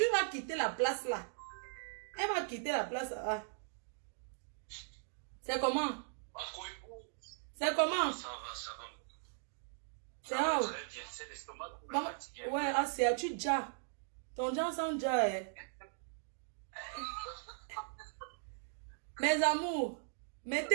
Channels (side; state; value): left; silent; digital silence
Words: vas quitter la place là. Elle va quitter la place là. C'est comment? C'est comment? Ça va. C'est où? Très bien, c'est l'estomac qui me Maman, fatigue. ouais, ah, c'est tu déjà. Ton déjà sent déjà, hein. Mes amours,